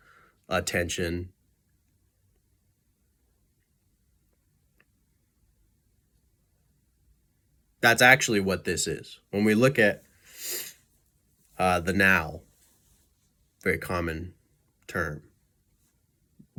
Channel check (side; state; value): both; identical; correlation 1.00